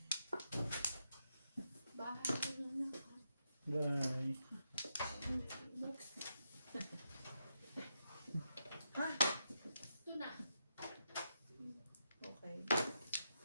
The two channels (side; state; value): both; inverted; correlation -0.84